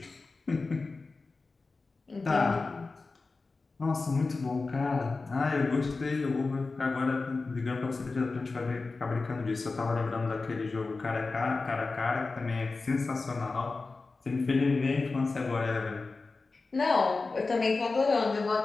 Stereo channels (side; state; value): right; quieter; 3.8 dB